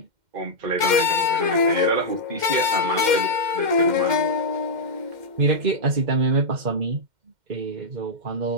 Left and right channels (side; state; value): left; late; 2.1 ms